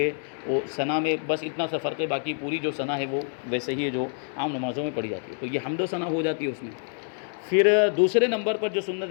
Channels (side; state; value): right; silent; 60 dB below the other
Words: وہ ثنا میں بس اتنا سا فرق ہے، باقی پوری جو ثنا ہے وہ ویسے ہی ہے جو عام نمازوں میں پڑھی جاتی ہے، تو یہ حمد و ثنا ہو جاتی ہے اس میں۔ پھر دوسرے نمبر پر جو سنت